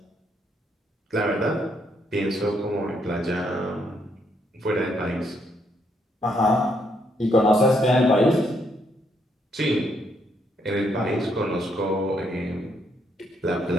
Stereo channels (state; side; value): normal; both; correlation 0.74